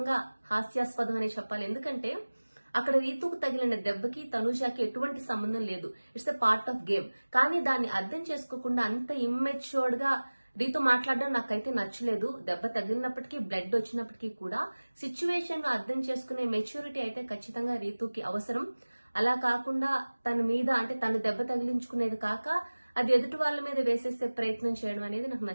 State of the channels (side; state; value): both; inverted; correlation -1.00